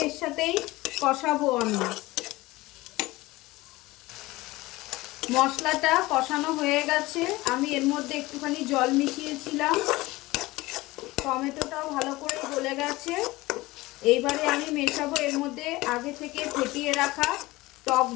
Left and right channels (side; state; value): right; quieter; 20.0 dB